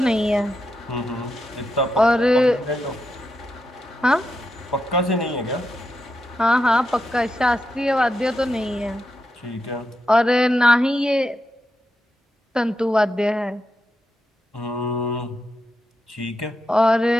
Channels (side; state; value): both; normal; correlation 0.86